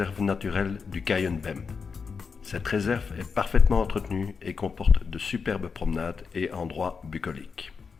naturelle du Cayenne-Bemm. Cette réserve est parfaitement entretenue et comporte de superbes promenades et endroits bucoliques.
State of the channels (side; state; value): right; quieter; 5.4 dB